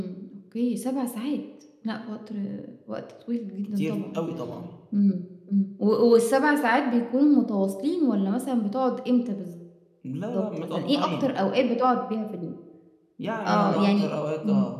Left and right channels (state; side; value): identical; both; correlation 1.00